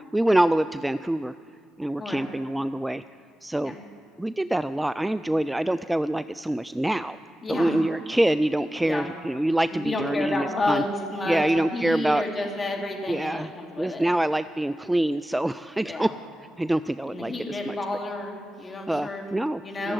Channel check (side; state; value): both; normal; correlation 0.95